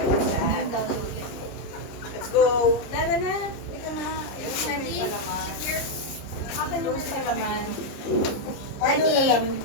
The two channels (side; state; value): right; late; 30 ms